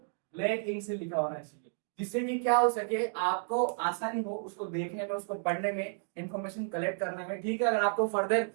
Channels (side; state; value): left; silent; digital silence